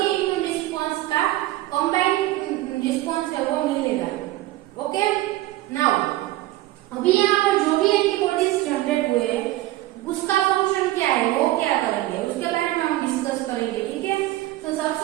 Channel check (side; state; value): left; quieter; 16.7 dB